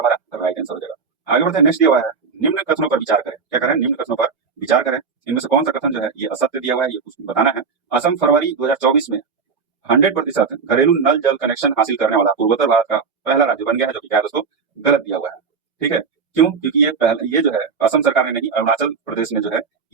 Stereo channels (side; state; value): left; quieter; 5.4 dB